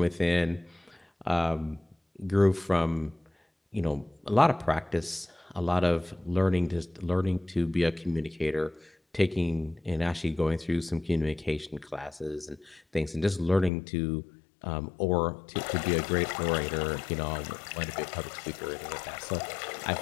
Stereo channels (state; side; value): drops out; right; at 13.7 s